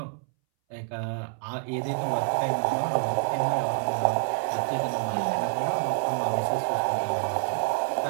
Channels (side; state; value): left; silent; 60 dB below the other